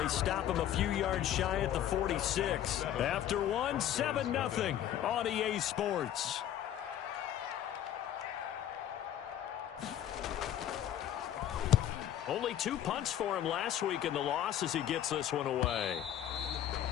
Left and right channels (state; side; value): quieter; right; 11.0 dB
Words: stop him a few yards shy at the 46. After one, 7-0 on EA Sports. Only 2 punts for him last week in the loss as he gets this one away.